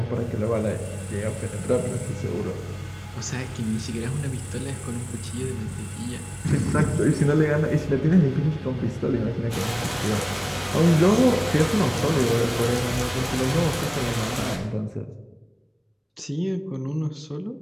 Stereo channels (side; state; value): both; identical; correlation 1.00